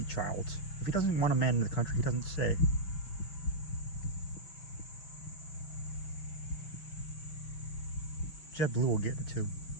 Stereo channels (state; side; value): late; right; 6.1 ms